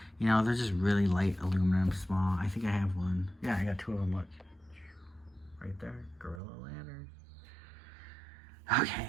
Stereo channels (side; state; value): left; drops out; at 6.4 s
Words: You know, they're just really light aluminum, small. I think I have one. Yeah, I got 2 of them, look. Right there, Gorilla Ladders. Okay,